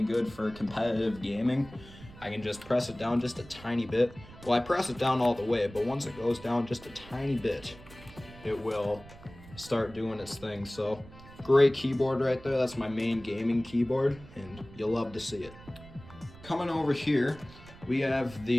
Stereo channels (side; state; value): right; noise; rumble, 19 dB below the sound